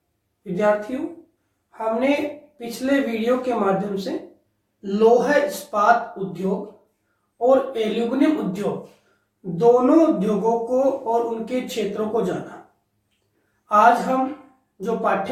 विद्यार्थियों, हमने पिछले वीडियो के माध्यम से लोहा इस्पात उद्योग और एल्यूमिनियम उद्योग दोनों उद्योगों को और उनके क्षेत्रों को जाना। आज हम जो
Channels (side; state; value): both; identical; correlation 1.00